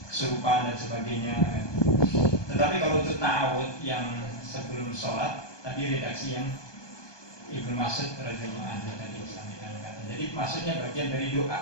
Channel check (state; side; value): late; right; 1.2 ms